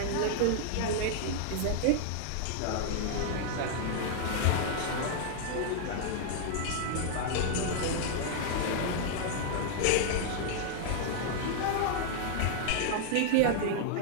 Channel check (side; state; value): both; different; correlation -0.01